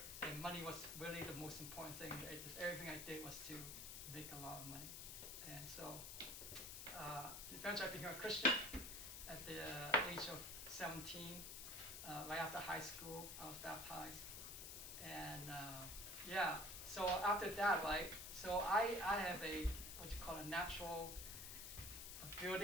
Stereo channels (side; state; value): left; noise; hiss, 7 dB below the sound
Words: and money was really the most important thing. Everything I did was to make a lot of money. And so eventually I became a Christian at the age of 17. Right after high school, I was baptized. And so after that, right, so I have a natural